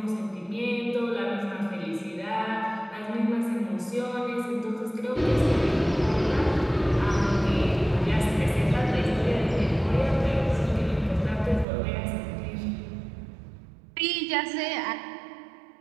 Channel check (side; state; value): left; drops out; at 11.7 s